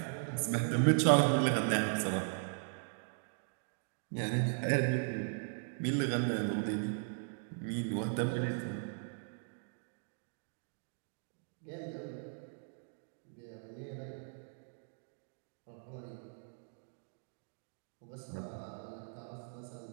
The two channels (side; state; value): left; silent; digital silence